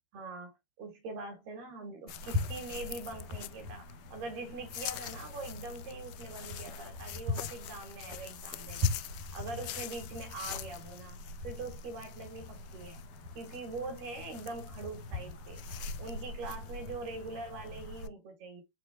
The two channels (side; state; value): left; late; 12 ms